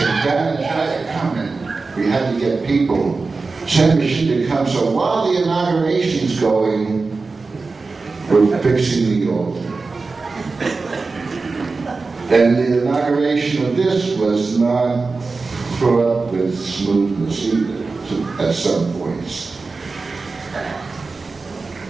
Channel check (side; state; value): left; quieter; 4.0 dB